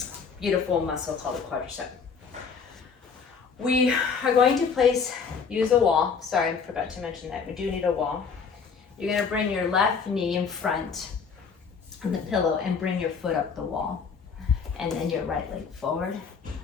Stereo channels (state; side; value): quieter; right; 5.8 dB